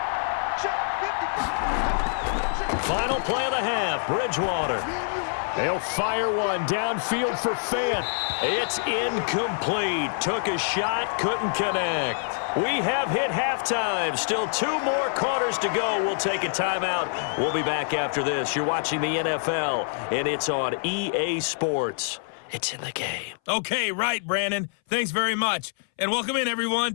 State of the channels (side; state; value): right; silent; 61 dB below the other